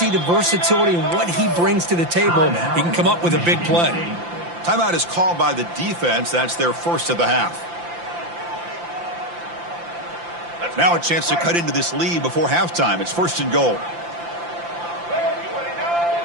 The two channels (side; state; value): left; late; 5.8 ms